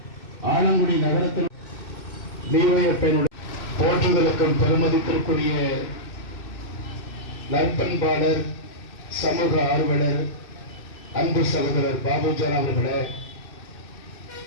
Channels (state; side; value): late; right; 2.6 ms